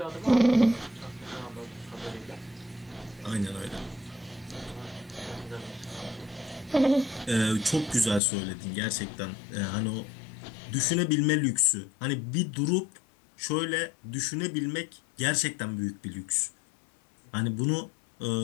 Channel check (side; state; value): right; drops out; at 8.2 s